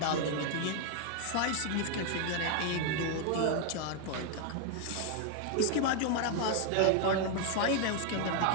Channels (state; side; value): different; both; correlation 0.00